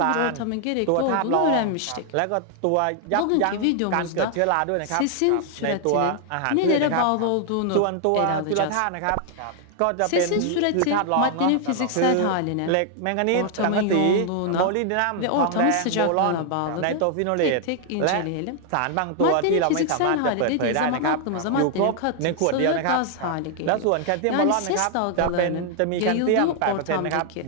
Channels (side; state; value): both; different; correlation 0.00